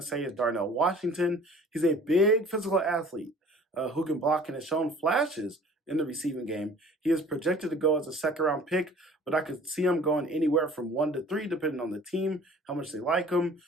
say, is Darnell Washington. He's a big physical athlete who can block and has shown flashes in the receiving game. He is projected to go as a second-round pick, but I could see him going anywhere from 1 to 3, depending on the team, how much they like him,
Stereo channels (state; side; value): normal; both; correlation 0.49